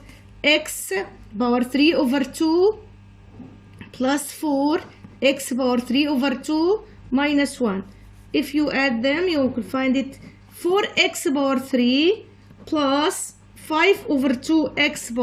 x power 3 over 2 plus 4 x power 3 over 2 minus 1. If you add them, you will find it 4x power 3 plus 5 over 2x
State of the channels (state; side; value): identical; both; correlation 1.00